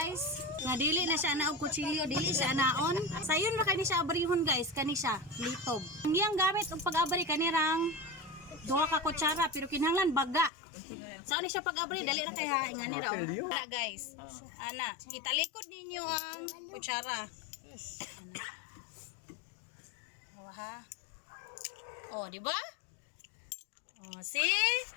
Nga dili na siya na og kutsilyo, dili siya naon. Sayon ra kani siya abrihon guys, kani siya litob. Ang iyang gamit og pag-abri kanirang duha ka kutsara pero kinahanglan baga. Saan ni siya pag-abri dali ra kay ha ingani ra. Ana guys. Ana, italikod ninyo ang kutsara. Ana. Oh ha. Oh, di ba? Oh, see?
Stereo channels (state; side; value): drops out; right; at 10.5 s